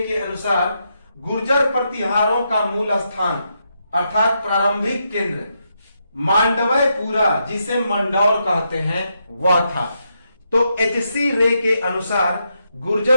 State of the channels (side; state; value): both; inverted; correlation -0.81